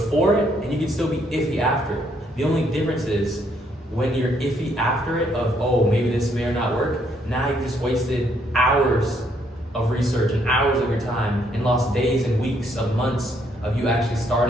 it, and you can still be iffy after it. The only difference is when you're iffy after it, of, oh, maybe this may or not work, now you've just wasted hours of research and hours of your time and lost days and weeks of months of you actually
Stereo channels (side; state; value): both; normal; correlation 0.70